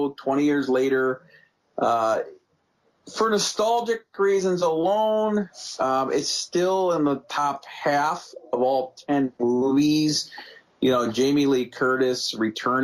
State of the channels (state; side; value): identical; both; correlation 1.00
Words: 20 years later. For nostalgic reasons alone, it's still in the top half of all 10 movies. Jamie Lee Curtis